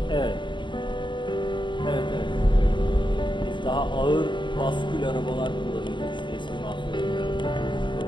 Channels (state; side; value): late; right; 0.23 ms